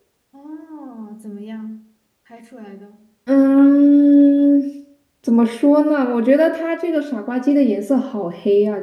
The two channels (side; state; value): both; identical; correlation 1.00